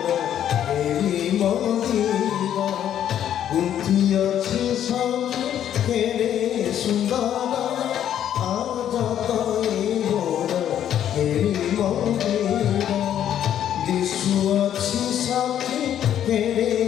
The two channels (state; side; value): quieter; right; 10.4 dB